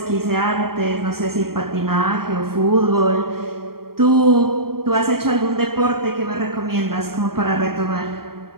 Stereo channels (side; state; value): left; late; 0.93 ms